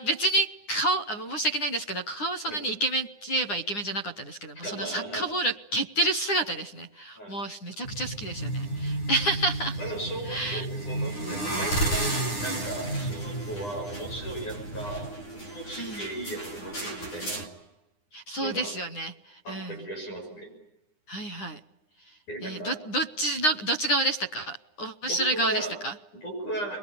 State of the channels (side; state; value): right; late; 9.8 ms